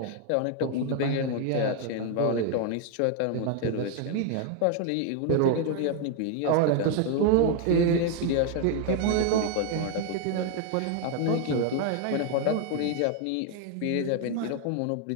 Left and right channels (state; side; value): different; both; correlation 0.01